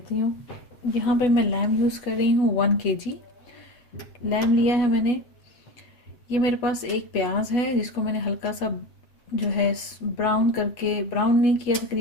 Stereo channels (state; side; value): late; right; 8.2 ms